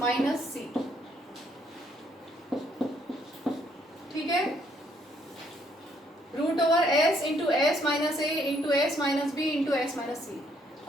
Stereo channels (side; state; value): both; normal; correlation 0.69